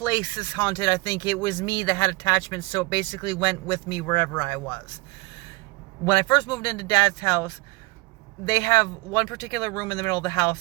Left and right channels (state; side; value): quieter; left; 24.4 dB